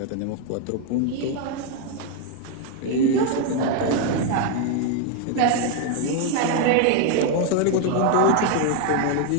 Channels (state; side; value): different; both; correlation 0.01